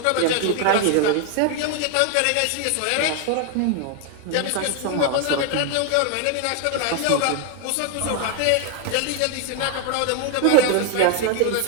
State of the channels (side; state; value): both; different; correlation 0.01